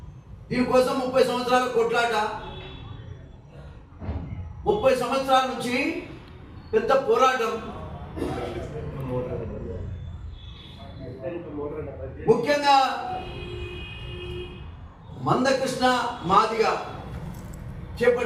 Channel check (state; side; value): identical; both; correlation 1.00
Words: దీనికోసం 30 సంవత్సరాల కొట్లాట, 30 సంవత్సరాల నుంచి పెద్ద పోరాటం. ముఖ్యంగా మందకృష్ణ మాదిగ